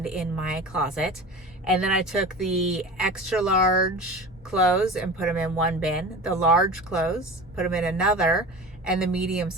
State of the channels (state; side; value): normal; both; correlation 0.34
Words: in my closet. And then I took the extra large clothes and put them in one bin, the large clothes, put them in another, and the medium